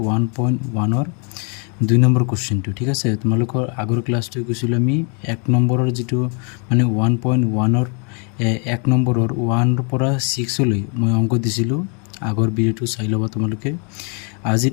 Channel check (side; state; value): right; quieter; 37.1 dB